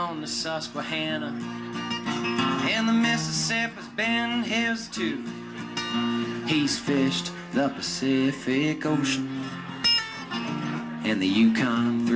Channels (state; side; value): identical; both; correlation 1.00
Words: the Susquehanna, and the Mississippi's been his too. He's fished the Pacific Ocean and the Yukon